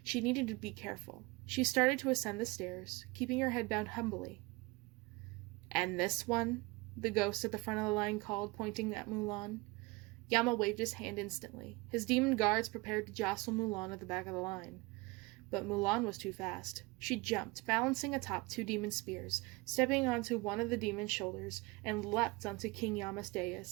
She needed to be careful. She started to ascend the stairs, keeping her head bowed humbly. "And this one?" the ghost at the front of the line called, pointing at Mulan. Yama waved his hand instantly. His demon guards prepared to jostle Mulan at the back of the line. But Mulan was too fast. She jumped, balancing atop 2 demon spears, stepping onto one of the demon's shoulders, and leapt onto King Yama's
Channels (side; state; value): left; quieter; 24.6 dB